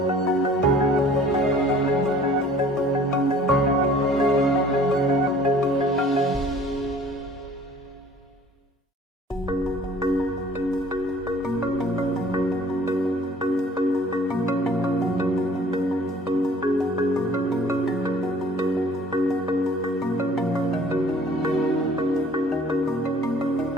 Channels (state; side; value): normal; both; correlation 0.52